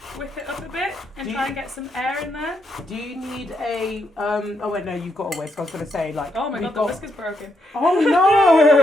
whip it up a bit and try and get some air in there. Do you need a oh wait, no, you've got a whisk. I was gonna say, like, oh my god, the whisk is broken. Oh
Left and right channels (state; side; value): normal; both; correlation 0.79